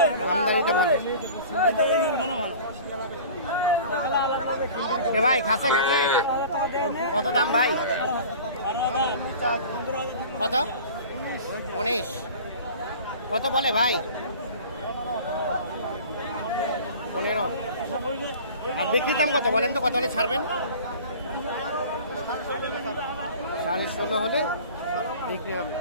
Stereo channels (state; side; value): inverted; both; correlation -0.41